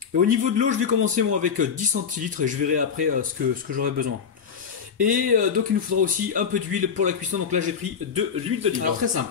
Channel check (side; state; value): right; quieter; 6.8 dB